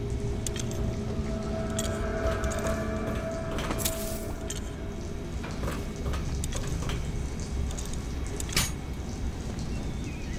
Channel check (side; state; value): both; identical; correlation 1.00